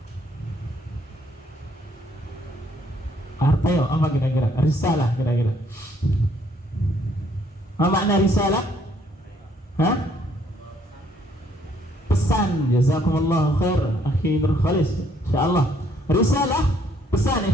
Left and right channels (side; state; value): both; normal; correlation 0.66